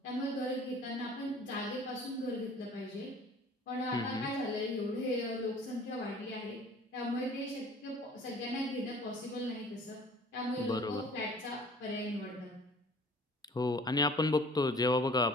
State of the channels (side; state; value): both; normal; correlation 0.50